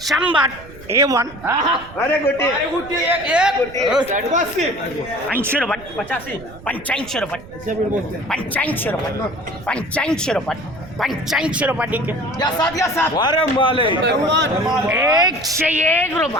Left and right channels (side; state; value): right; noise; rumble, 18 dB below the sound